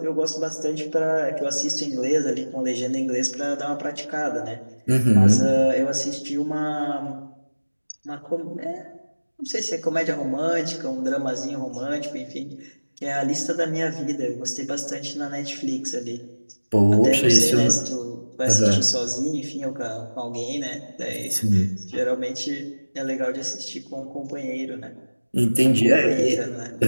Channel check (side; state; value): both; inverted; correlation -1.00